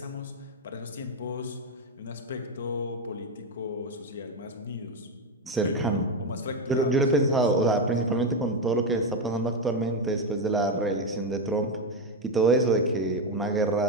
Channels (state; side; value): normal; both; correlation 0.09